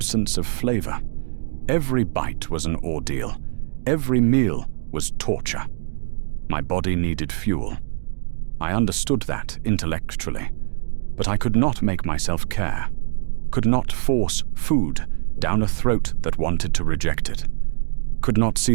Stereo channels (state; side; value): silent; left; digital silence